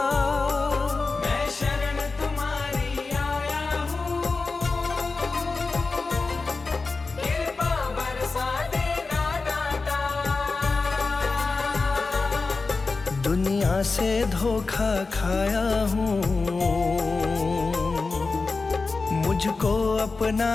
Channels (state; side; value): quieter; right; 4.0 dB